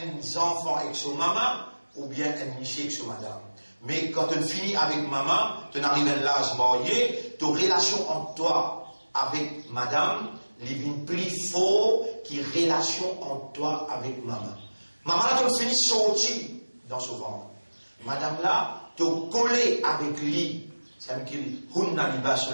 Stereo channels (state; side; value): inverted; both; correlation -1.00